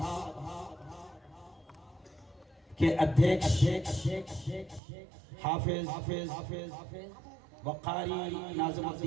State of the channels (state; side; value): drops out; left; at 4.8 s